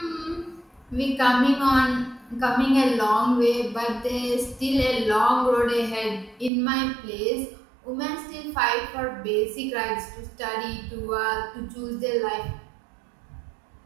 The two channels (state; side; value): drops out; left; at 6.5 s